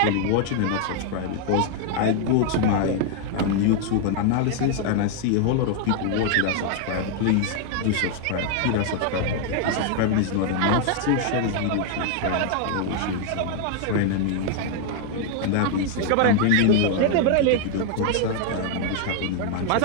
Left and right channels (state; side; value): different; both; correlation 0.00